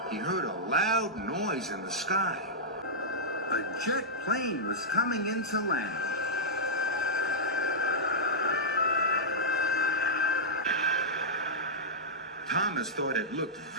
he heard a loud noise in the sky. A jet plane was coming into land. Thomas thought it looked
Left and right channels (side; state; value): both; normal; correlation -0.10